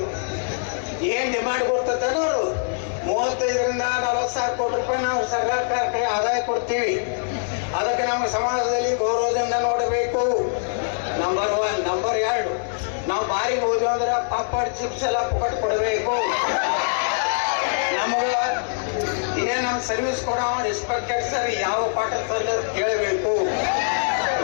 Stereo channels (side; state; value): right; silent; digital silence